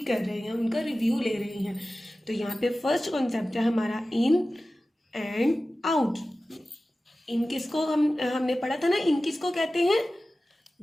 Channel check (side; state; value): both; normal; correlation 0.96